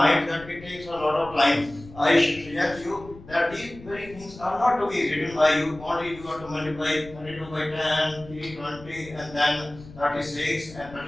that it takes a lot of time. I should suggest you that these very things are not to be written by you. Only you have to multiply 32 by 10, 320, and then 36, and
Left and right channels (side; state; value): left; noise; rumble, 18 dB below the sound